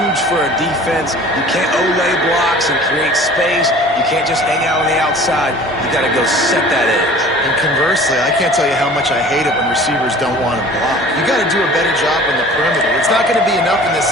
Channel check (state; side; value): normal; both; correlation 0.45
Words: for a defense. You can't olay blocks and create space. You can't just hang out on the outside. You got to go set that edge. And conversely, I can't tell you how much I hate it when receivers don't want to block. You got to do a better job on the perimeter. It's not going to be enough in this